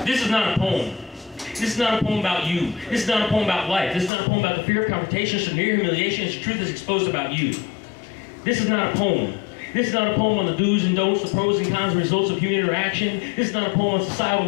This is not a poem. This is not a poem about you. This is not a poem about life. This is not a poem about the fear of confrontation, severe humiliation, as the truth is exposed about you. This is not a poem. This is not a poem on the do's and don'ts, the pros and cons, and results of human interaction. This is not a poem on societal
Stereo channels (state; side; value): drops out; right; at 4.1 s